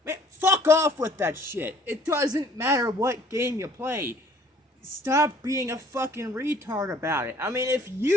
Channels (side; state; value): both; normal; correlation 0.57